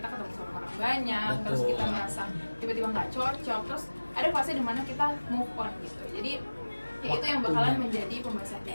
ketemu sama orang banyak, terus Betul. kita merasa tiba-tiba nggak cocok, terus ada fase dimana kita move on gitu. Jadi ya itu yang bakalan Waktunya. menjadi pembahasan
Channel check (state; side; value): inverted; both; correlation -1.00